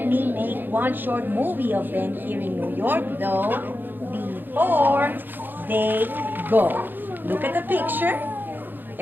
me make one short movie of them here in New York, though, before they go. Look at the picture.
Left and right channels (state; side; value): late; left; 0.092 ms